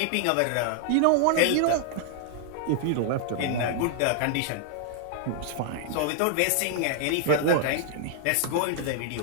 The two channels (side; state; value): both; different; correlation 0.00